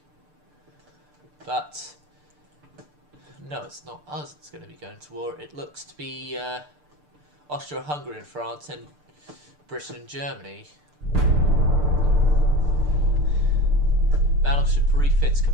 But... No, it's not us that's going to be going to war. It looks to be Austria-Hungary and France and Britain and Germany. Battleship refits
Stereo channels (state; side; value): late; left; 6.7 ms